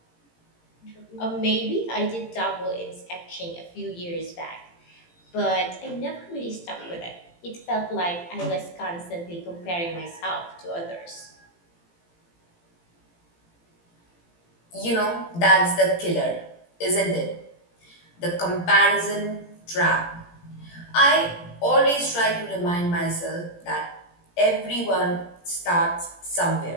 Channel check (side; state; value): right; late; 17 ms